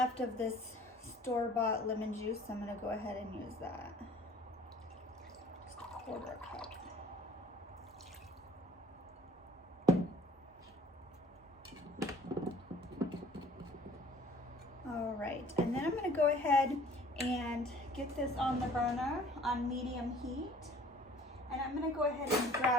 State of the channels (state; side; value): normal; both; correlation 0.51